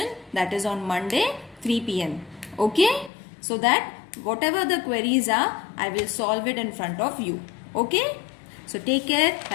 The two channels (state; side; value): drops out; right; at 3.1 s